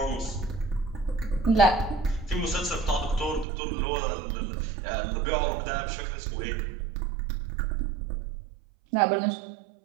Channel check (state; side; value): drops out; left; at 3.5 s